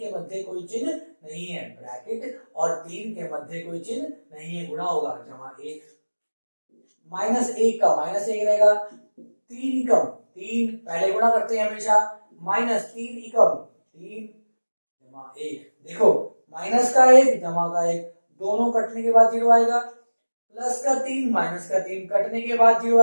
मध्य कोई चिन्ह नहीं है, ब्रैकेट और 3 के मध्य कोई चिन्ह नहीं है, गुणा होगा जमा 1, माइनस 1 का माइनस 1 रहेगा, 3 एकम 3, पहले गुणा करते हैं हमेशा, माइनस 3 एकम 3 जमा 1, देखो माइनस का 1 जमा का 1 दोनों कटने के बाद 0 आएगा, प्लस का 3 माइनस का 3 कटने के बाद 0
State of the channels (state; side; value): inverted; both; correlation -1.00